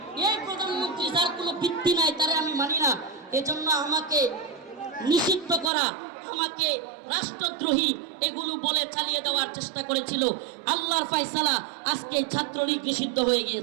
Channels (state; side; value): drops out; left; at 5.7 s